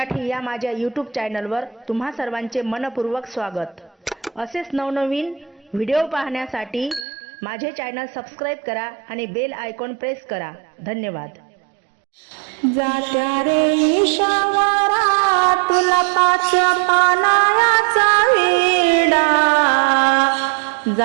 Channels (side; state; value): left; drops out; at 7.1 s